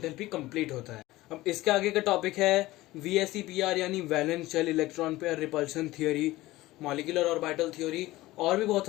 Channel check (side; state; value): right; quieter; 17.9 dB